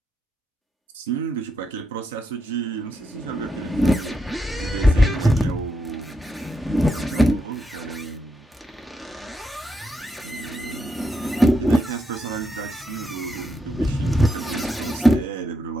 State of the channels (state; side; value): normal; both; correlation 0.82